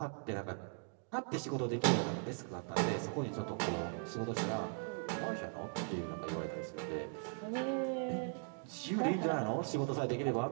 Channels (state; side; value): silent; left; 52 dB below the other